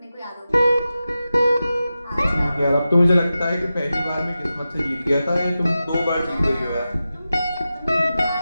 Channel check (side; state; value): both; inverted; correlation -0.93